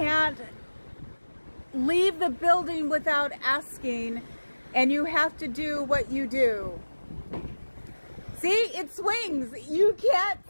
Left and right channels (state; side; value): inverted; both; correlation -1.00